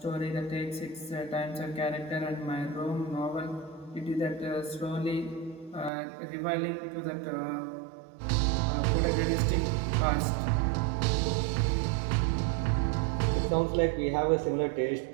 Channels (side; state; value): left; drops out; at 5.9 s